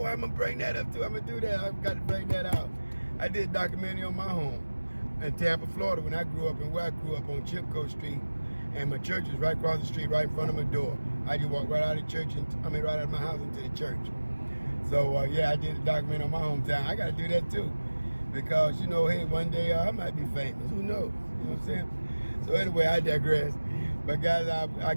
I'm gonna bring that up too. I'm gonna do that. I've got to bring that out. I did a documentary on my home in Tampa, Florida, when I grew up, and where I grew up on Chipco Street, and my church was right across the street, right in front of my door. I just walked right out of church, right out of my house into the church. So yeah, I did a documentary on my hometown. I gotta do that too, because you know, hey, one day I might be famous. Who knows? You know what I'm saying? So anyway, I digress. But guys, I'll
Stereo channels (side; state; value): both; inverted; correlation -1.00